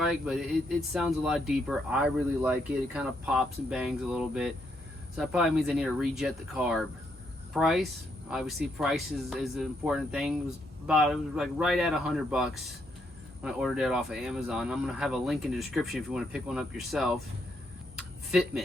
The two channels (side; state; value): both; normal; correlation 0.76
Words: but it sounds a lot deeper. I really like it. It kind of pops and bangs a little bit. So that probably means I need to rejet the carb. Price, obviously price is an important thing. It was like right at $100 when I ordered it off of Amazon. I'm going to have a link in the description if you want to pick one up yourself.